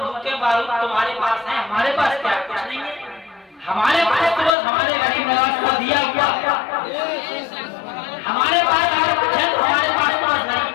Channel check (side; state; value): right; drops out; at 4.5 s